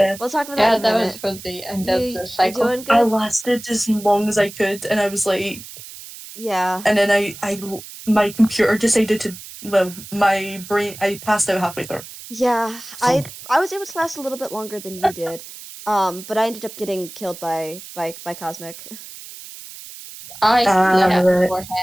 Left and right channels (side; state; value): right; noise; hiss, 15 dB below the sound